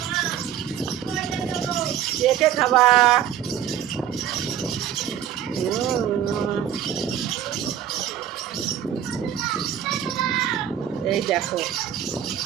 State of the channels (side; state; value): left; quieter; 10.1 dB